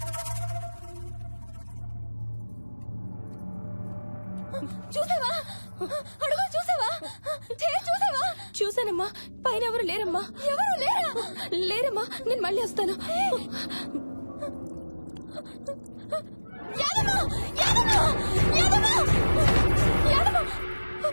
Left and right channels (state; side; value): inverted; both; correlation -1.00